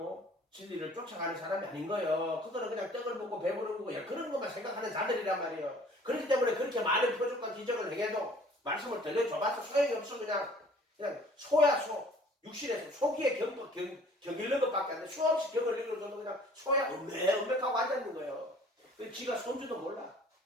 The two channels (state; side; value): normal; both; correlation 0.53